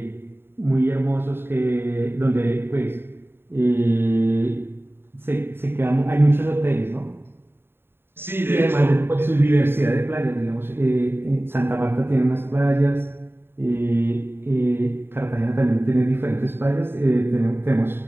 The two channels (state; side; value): late; left; 0.11 ms